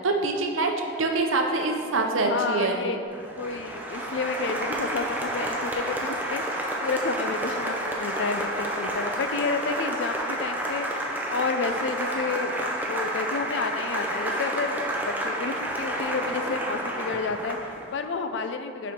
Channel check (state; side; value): normal; both; correlation 0.06